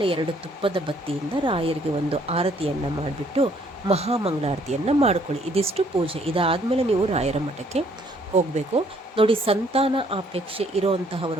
2 ತುಪ್ಪದ ಬತ್ತಿಯಿಂದ ರಾಯರಿಗೆ ಒಂದು ಆರತಿಯನ್ನು ಮಾಡಿಬಿಟ್ಟು ಮಹಾಮಂಗಳಾರತಿಯನ್ನು ಮಾಡ್ಕೊಳ್ಳಿ. ಇದಿಷ್ಟು ಪೂಜೆ. ಇದಾದಮೇಲೆ ನೀವು ರಾಯರ ಮಠಕ್ಕೆ ಹೋಗಬೇಕು. ನೋಡಿ, ಸಂತಾನ ಅಪೇಕ್ಷೆ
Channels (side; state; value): both; normal; correlation 0.64